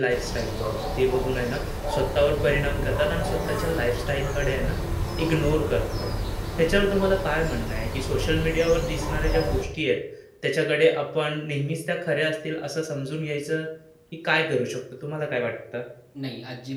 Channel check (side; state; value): both; identical; correlation 1.00